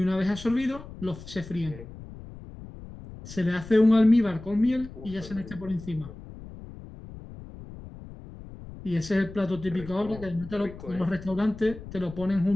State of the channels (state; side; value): noise; left; rumble, 15 dB below the sound